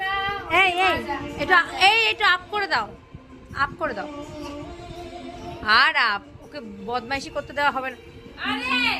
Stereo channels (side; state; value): both; identical; correlation 1.00